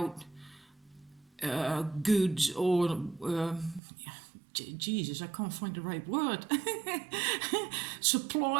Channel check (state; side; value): drops out; left; at 3.8 s